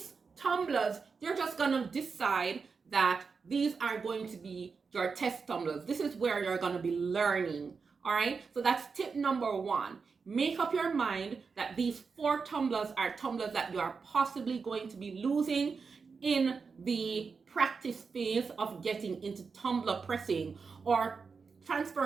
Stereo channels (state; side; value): quieter; left; 5.1 dB